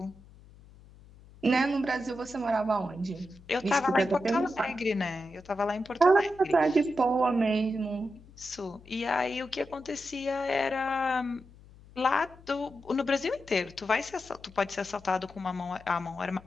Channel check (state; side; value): noise; left; hum, 23 dB below the sound